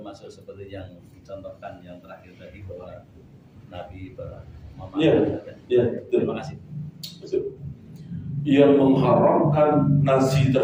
seperti yang dicontohkan yang terakhir tadi bahwa Nabi memakan? Iya. Terima kasih. Betul. Yang mengharamkan nasi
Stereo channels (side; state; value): both; identical; correlation 1.00